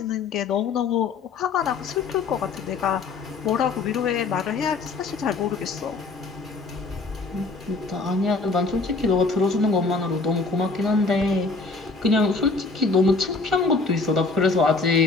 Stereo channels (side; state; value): right; quieter; 3.9 dB